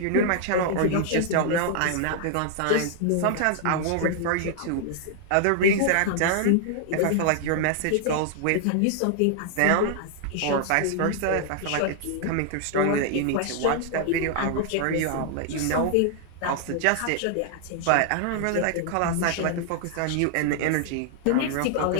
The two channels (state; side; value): different; both; correlation -0.01